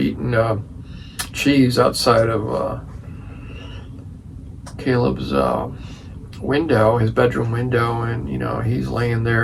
cheese outside of Caleb's window, his bedroom window, and you know he's laying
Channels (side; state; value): both; identical; correlation 1.00